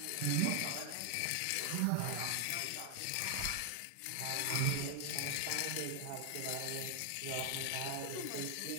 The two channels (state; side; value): different; both; correlation 0.00